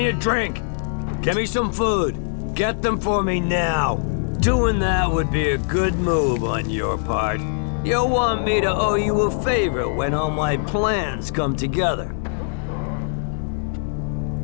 a drink. Give me some food. Get them for me now. Doing that would be a good move on your part. You'll want me to owe you a favor when all my plans come together.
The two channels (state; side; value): silent; right; digital silence